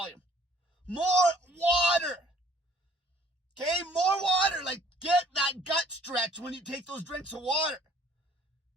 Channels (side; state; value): both; normal; correlation 0.59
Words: More water. Okay, more water. Like, get that gut stretch when you take those drinks of water.